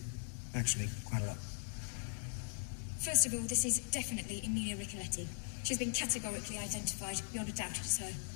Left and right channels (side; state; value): right; silent; digital silence